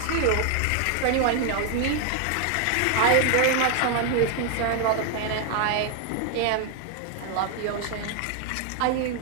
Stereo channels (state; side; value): different; both; correlation 0.01